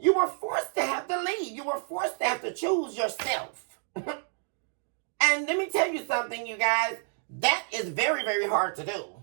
were forced to have to leave. You were forced to have to choose yourself. And let me tell you something, you guys. That is very, very hard to do.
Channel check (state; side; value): silent; left; 57 dB below the other